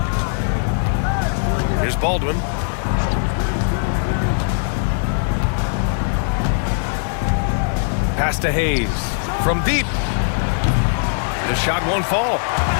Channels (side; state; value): right; silent; digital silence